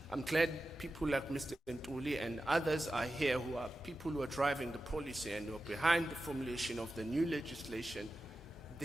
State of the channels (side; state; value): both; normal; correlation 0.93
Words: I'm glad people like Mr. Ntuli and others are here, who are people who are driving the policy and who are behind the formulation of the new legislation.